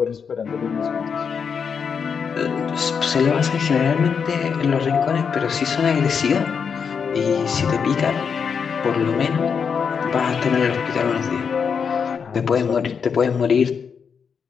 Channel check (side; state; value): right; quieter; 6.4 dB